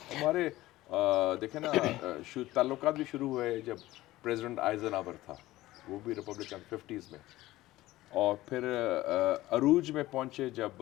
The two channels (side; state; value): right; quieter; 16.9 dB